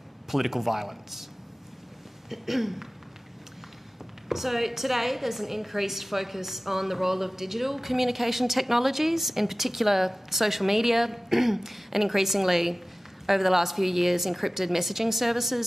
political violence. So today there's an increased focus on the role of digital communication technologies, in particular social media, and increasingly over the last few years encrypted messaging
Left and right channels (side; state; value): both; normal; correlation 0.96